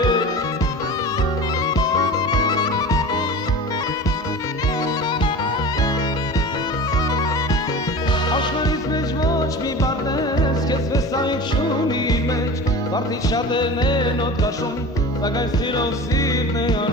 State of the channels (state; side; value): normal; both; correlation 0.34